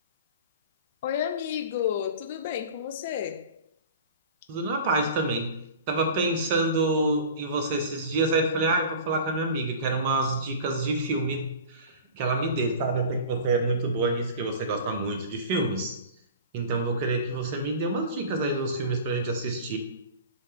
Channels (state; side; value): inverted; both; correlation -0.37